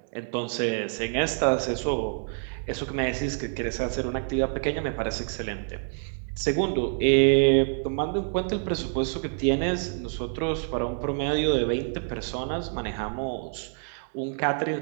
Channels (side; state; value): left; silent; 60 dB below the other